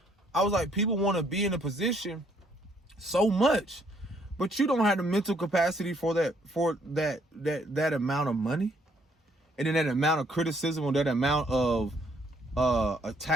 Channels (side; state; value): both; normal; correlation 0.67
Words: I was like, people want to be in a position so much, but you don't have the mental capacity for that amount of money, and then that amount of criticism, or that amount of